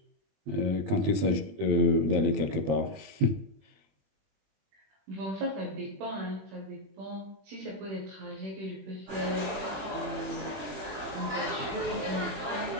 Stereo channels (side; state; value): left; late; 21 ms